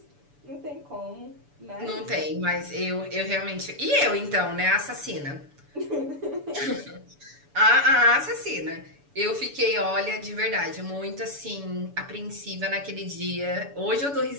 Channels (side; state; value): left; late; 7.0 ms